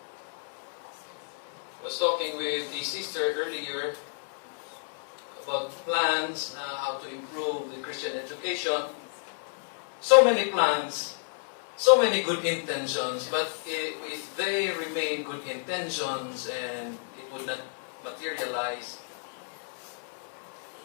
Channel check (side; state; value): right; silent; 58 dB below the other